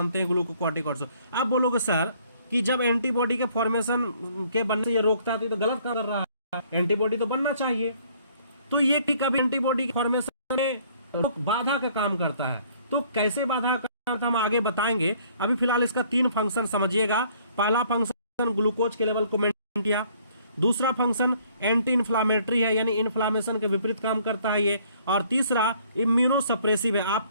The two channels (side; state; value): both; inverted; correlation -0.61